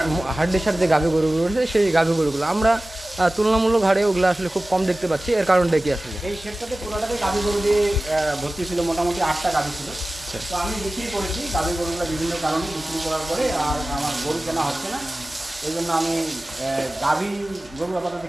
হাড্ডিসার যে গাভী গরুগুলো রয়েছে সেই গাভী গরুগুলো আমরা তুলনামূলক হারে ওগুলো আসলে খুব কম দেখতে পাচ্ছি। এর কারণটা কি আসলে? এই সেটটাতে পুরোটাতে গাভী গরু দিয়ে ভর্তি ছিল, মোটামুটি 8টা গাভী ছিল। তো আমি বিক্রি করেছি গাভী গরুগুলো বিভিন্ন কারণে বিক্রি করার পরে, আর আমার গরু কেনা হচ্ছে না, এই জন্য আমি গাভী গরু আপাতত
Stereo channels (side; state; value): both; normal; correlation 0.97